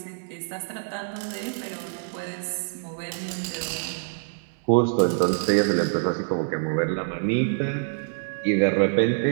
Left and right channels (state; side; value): silent; left; digital silence